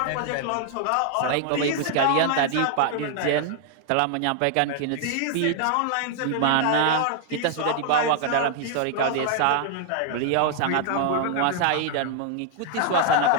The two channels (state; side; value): different; both; correlation 0.00